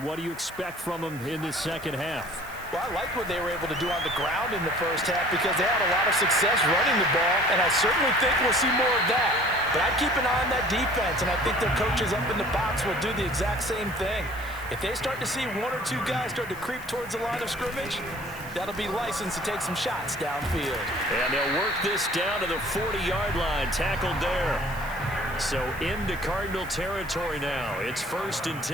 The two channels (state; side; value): noise; right; hiss, 19 dB below the sound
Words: do you expect from them in this second half? Well, I like what they were able to do on the ground in the first half because they had a lot of success running the ball, and I certainly think we'll see more of that. But I'd keep an eye on that defense, and I think their coaches up in the box will do the exact same thing. If they start to see one or two guys start to creep towards the line of scrimmage, that'll be licensed to take some shots downfield. And they'll work this down to the 40-yard line, tackled there. So into Cardinal territory now. It's 1st and